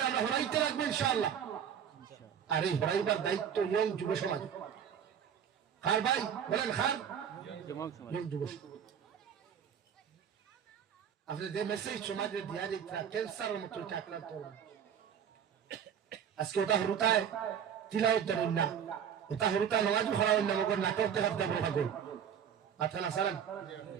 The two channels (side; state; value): left; quieter; 8.3 dB